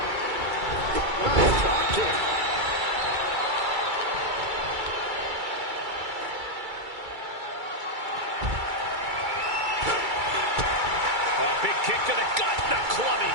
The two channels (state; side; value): late; left; 2.3 ms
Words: Nice drop kick. A big kick to the gut, the